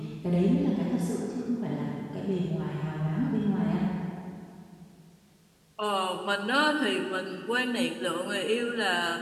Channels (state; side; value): identical; both; correlation 1.00